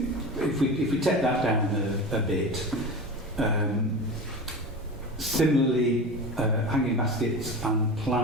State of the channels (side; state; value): both; normal; correlation 0.29